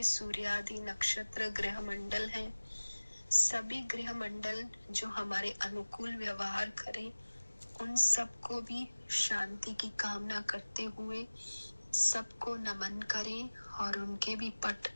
सूर्यादि नक्षत्र ग्रह मंडल हैं। सभी ग्रह मंडल जो हमारे अनुकूल व्यवहार करें, उन सबको भी शांति की कामना करते हुए सबको नमन करें और उनके भी पट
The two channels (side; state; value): both; inverted; correlation -1.00